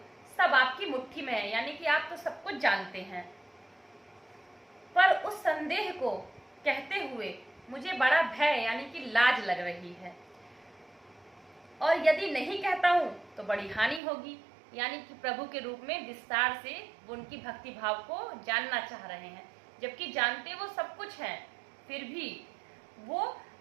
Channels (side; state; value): left; drops out; at 14.0 s